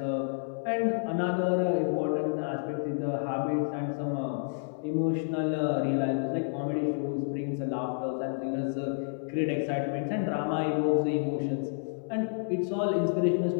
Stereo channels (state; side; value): silent; right; 58 dB below the other